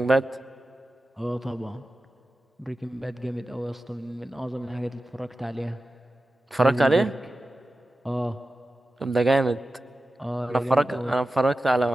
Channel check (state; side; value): normal; both; correlation 0.93